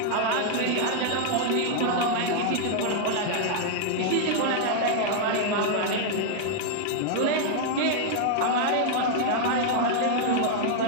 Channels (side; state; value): both; different; correlation 0.00